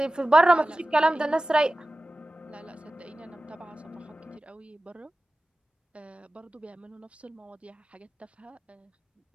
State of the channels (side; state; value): both; normal; correlation 0.96